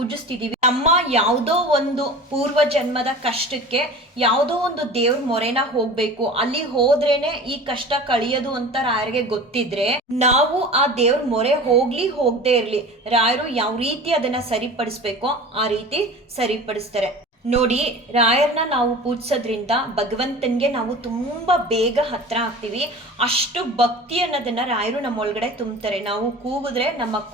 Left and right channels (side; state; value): both; normal; correlation 0.37